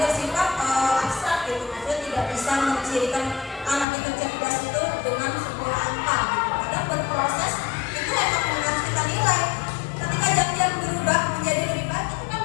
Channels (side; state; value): right; drops out; at 3.9 s